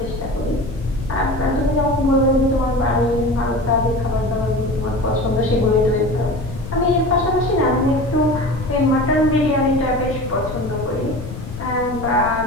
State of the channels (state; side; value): noise; left; rumble, 10 dB below the sound